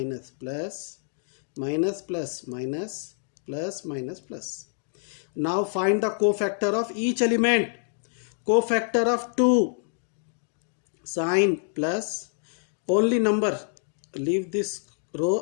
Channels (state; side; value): silent; right; 60 dB below the other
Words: plus, minus, plus, minus, plus, minus, plus. Now find the cofactor of each element. Cofactor of 2. Sign plus, only number. Leave this